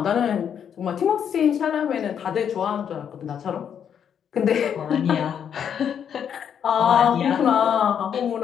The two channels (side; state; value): right; quieter; 8.3 dB